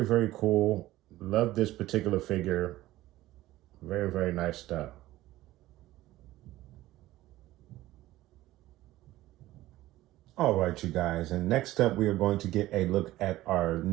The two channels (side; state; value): left; quieter; 16.2 dB